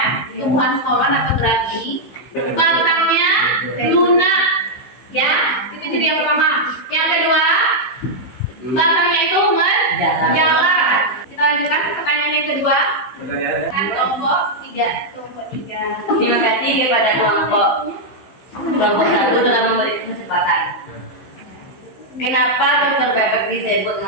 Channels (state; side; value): late; right; 15 ms